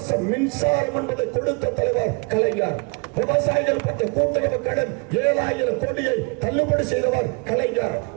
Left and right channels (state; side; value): quieter; left; 32.1 dB